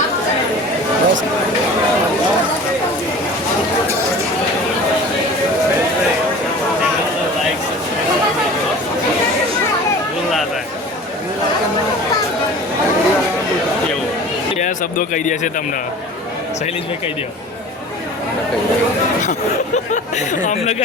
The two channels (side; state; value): both; normal; correlation 0.41